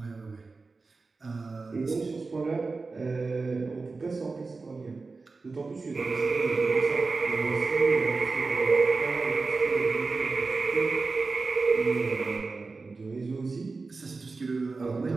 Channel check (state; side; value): quieter; left; 4.0 dB